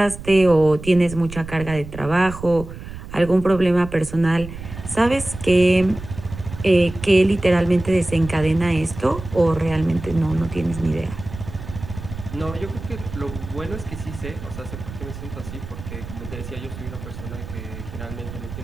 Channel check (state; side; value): noise; right; rumble, 11 dB below the sound